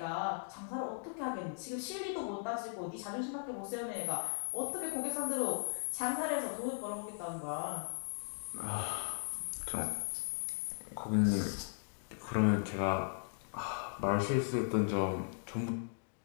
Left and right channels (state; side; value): silent; right; digital silence